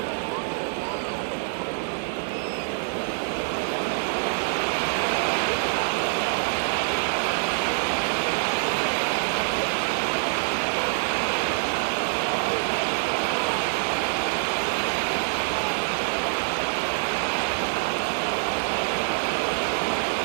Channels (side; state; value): left; silent; digital silence